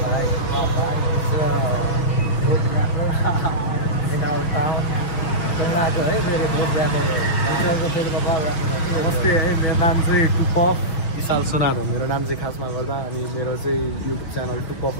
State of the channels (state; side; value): late; right; 6.2 ms